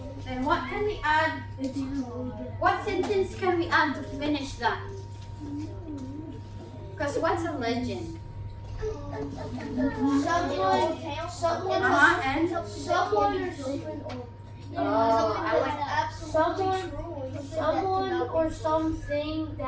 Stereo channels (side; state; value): both; identical; correlation 1.00